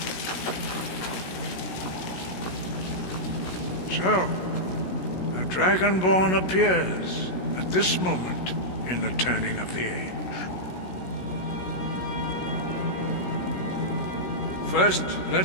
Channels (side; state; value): right; late; 16 ms